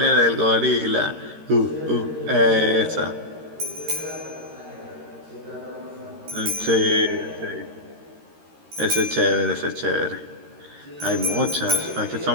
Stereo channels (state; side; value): late; left; 13 ms